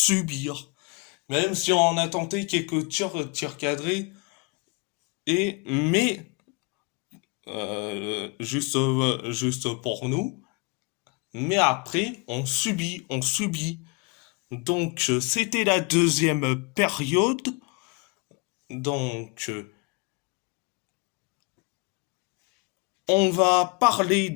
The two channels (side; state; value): right; quieter; 29.4 dB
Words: Même si on a tenté quelques tirs cadrés, mais juste pour nous. Mais après, on subit, on subit. Donc, c'était la deuxième période. Donc, On va parler